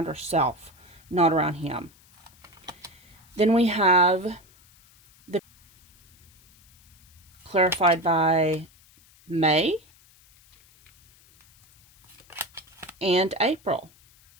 herself, not around him. Then we have the clarified by May and April.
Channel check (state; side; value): noise; left; hiss, 29 dB below the sound